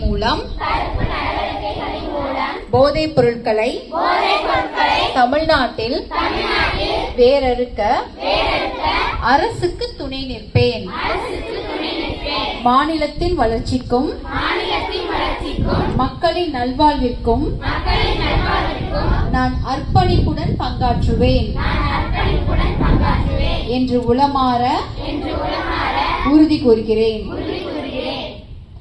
மூலம் போதைப் பொருட்களை தமிழ்நாட்டில் வேரறுக்க அரசுக்கு துணை நிற்பேன். மாநிலத்தின் வளர்ச்சிக்கும் மக்களின் நல்வாழ்விற்கும் நான் அர்ப்பணிப்புடன் பங்காற்றுவேன் என்று உளமாற உறுதி கூறுகிறேன்.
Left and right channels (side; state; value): both; identical; correlation 1.00